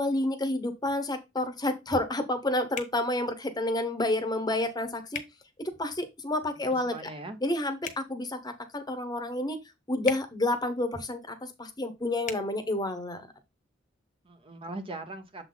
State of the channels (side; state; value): both; normal; correlation 0.49